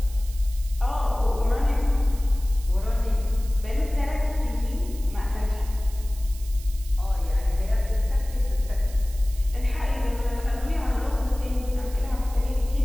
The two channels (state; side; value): noise; right; hiss, 18 dB below the sound